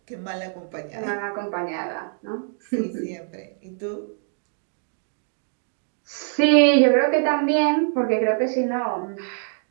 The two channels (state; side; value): silent; left; 62 dB below the other